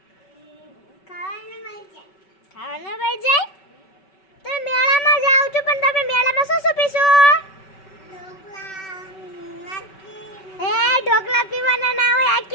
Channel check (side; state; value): right; late; 5.2 ms